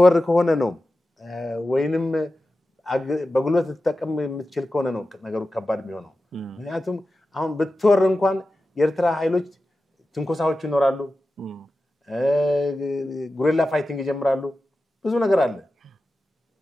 ከሆነ ነው ወይንም በጉልበት ልትጠቀም የምትችል ከሆነ ነው ነገሩ ከባድ የሚሆነው። ምክንያቱም አሁን ብትወር እንኳን የኤርትራ ኃይሎች ትንኮሳዎች ይኖራሉ፣ ጉሪላ ፋይቲንግ ይጀምራሉ፣ ብዙ ነገር አለ።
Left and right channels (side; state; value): both; normal; correlation 0.93